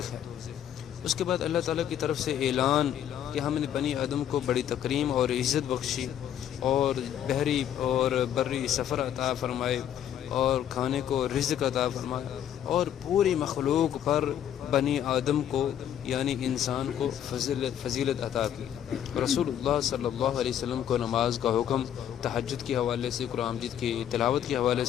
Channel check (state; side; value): quieter; right; 10.2 dB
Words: ہے۔ اس کے بعد اللہ تعالیٰ کی طرف سے اعلان کہ ہم نے بنی آدم کو بڑی تکریم اور عزت بخشی اور بحری اور بری سفر عطا فرمائے اور کھانے کو رزق عطا فرمایا اور پوری مخلوق پر بنی آدم کو یعنی انسان کو فضیلت عطا کی۔ رسول اللہ صلی اللہ علیہ وسلم کو نماز کا حکم، تہجد کے حوالے سے، قرآن مجید کی تلاوت کے حوالے